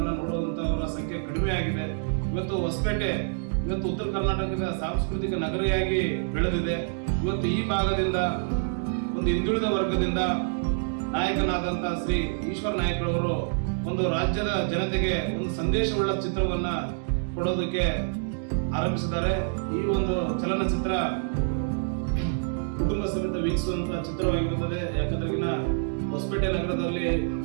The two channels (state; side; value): silent; left; digital silence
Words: ನೋಡುವಂತವರ ಸಂಖ್ಯೆ ಕಡಿಮೆ ಆಗಿದೆ. ಇವತ್ತು ಹೊಸಪೇಟೆ ಉತ್ತರ ಕರ್ನಾಟಕದ ಸಾಂಸ್ಕೃತಿಕ ನಗರಿಯಾಗಿ ಬೆಳೆದಿದೆ. ಇವತ್ತು ಈ ಭಾಗದಿಂದ ಒಂದು ಹಿಂದುಳಿದ ವರ್ಗದಿಂದ ನಾಯಕನಾದಂತ ಶ್ರೀ ಈಶ್ವರ ನಾಯಕ್ ಅವರು ಒಂದು ರಾಜ್ಯದ ಜನತೆಗೆ ಒಂದು ಸಂದೇಶವುಳ್ಳ ಚಿತ್ರವನ್ನ ಕೊಡೋದಕ್ಕೆ ಆರಂಭಿಸಿದ್ದಾರೆ. ಈ ಒಂದು ಚಲನಚಿತ್ರ ಕುಟುಂಬ ಸಮೇತ ವೀಕ್ಷಿಸುವಂತಹ ಚಿತ್ರವಾಗಿರುತ್ತದೆ. ಯಾಕಂದ್ರೆ ಹೊಸಪೇಟೆ ನಗರದಲ್ಲಿ